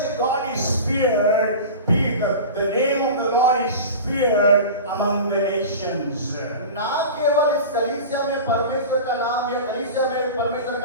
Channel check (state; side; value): inverted; both; correlation -0.32